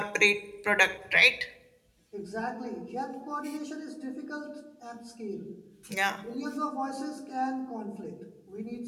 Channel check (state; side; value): identical; both; correlation 1.00